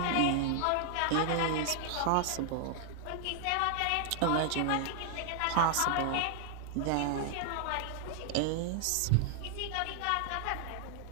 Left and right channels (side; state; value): both; different; correlation -0.01